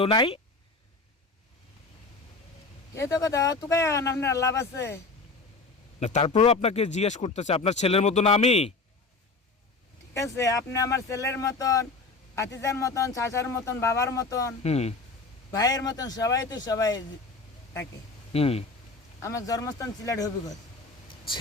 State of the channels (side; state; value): right; quieter; 3.7 dB